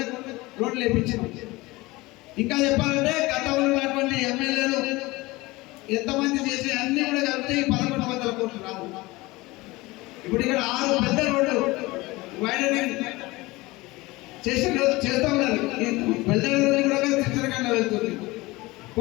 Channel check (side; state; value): right; quieter; 21.3 dB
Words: రోడ్లు వేయించినాం. ఇంకా చెప్పాలంటే గతంలో ఉన్నటువంటి ఎమ్మెల్యేలు ఎంతమంది చేసి అన్ని కూడా కలిపితే 1100 కోట్లు రాదు. ఇప్పుడు ఇక్కడ 6 పెద్ద రోడ్లు వైడనింగ్ చేస్తా ఉన్నారు. పెద్ద రోడ్లు కూడా చిత్రకంగా వెళ్తుంది,